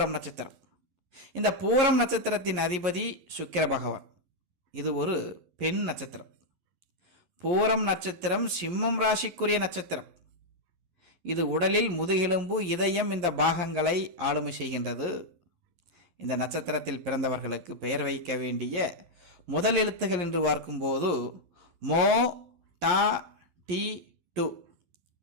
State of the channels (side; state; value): left; late; 11 ms